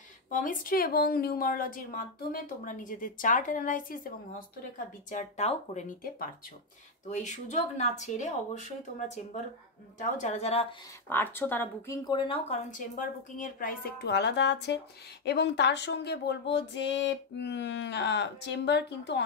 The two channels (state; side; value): quieter; right; 3.2 dB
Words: পমিস্ট্রি এবং নিউমারোলজির মাধ্যমে তোমরা নিজেদের চার্ট অ্যানালাইসিস এবং হস্তরেখা বিচারটাও করে নিতে পারছো। তো এই সুযোগ না ছেড়ে অবশ্যই তোমরা চেম্বারটাও যারা যারা পারছো তারা বুকিং করে নাও, কারণ চেম্বার বুকিংয়ের প্রাইস একটু আলাদা আছে। এবং তার সঙ্গে বলবো যে চেম্বার কিন্তু